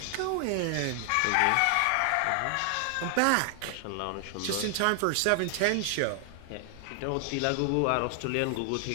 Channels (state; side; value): different; both; correlation 0.00